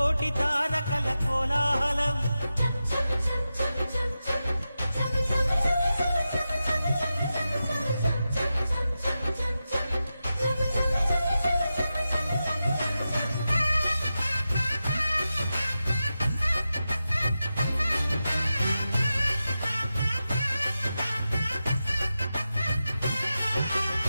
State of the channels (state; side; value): inverted; both; correlation -0.91